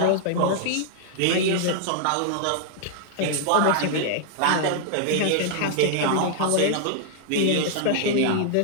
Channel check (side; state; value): both; different; correlation -0.01